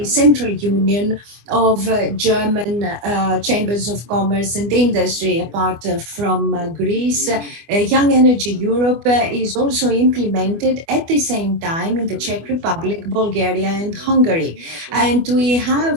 Central Union of German Chambers of Commerce and Industry. Apart from Greece, Young Energy Europe is also implemented at the same time in the Czech Republic, Bulgaria and Hungary. And we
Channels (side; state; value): left; late; 24 ms